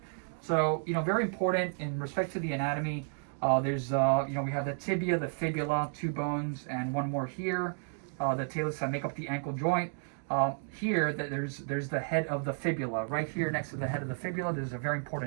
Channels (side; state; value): left; silent; 56 dB below the other